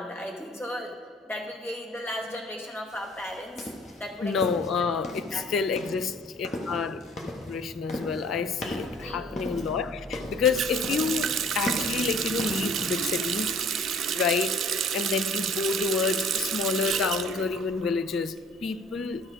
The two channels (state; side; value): normal; both; correlation 0.52